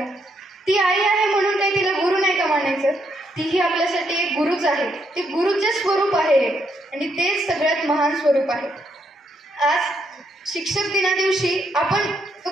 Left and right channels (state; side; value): normal; both; correlation 0.76